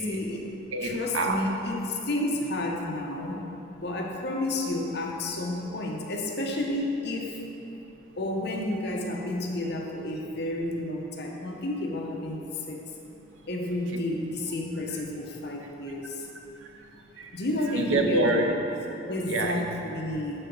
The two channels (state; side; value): normal; both; correlation 0.34